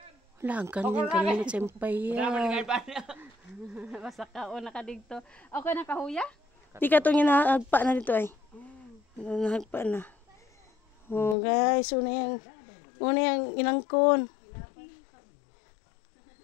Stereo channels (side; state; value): right; drops out; at 11.4 s